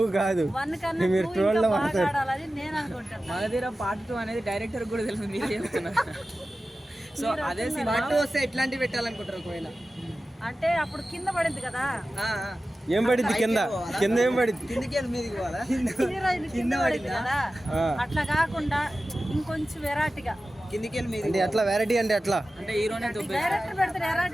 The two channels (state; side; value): normal; both; correlation 0.95